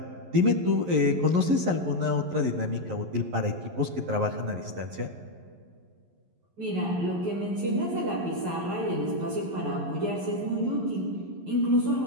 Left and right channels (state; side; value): late; left; 11 ms